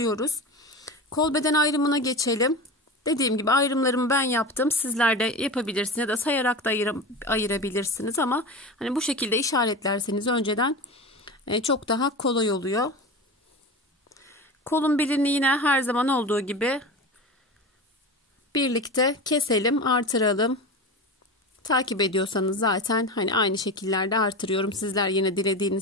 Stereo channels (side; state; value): both; normal; correlation 0.27